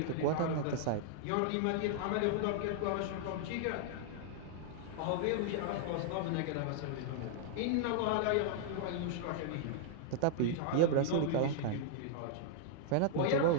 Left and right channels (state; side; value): different; both; correlation -0.01